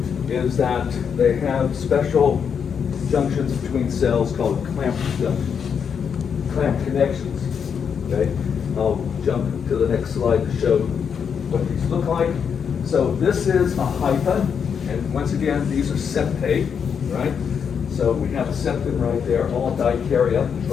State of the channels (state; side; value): quieter; right; 7.0 dB